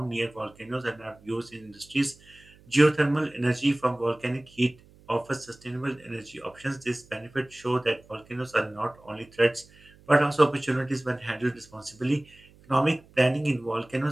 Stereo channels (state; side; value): noise; right; hum, 26 dB below the sound